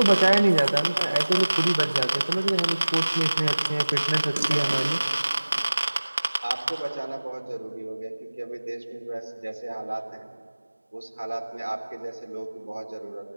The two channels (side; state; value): both; inverted; correlation -1.00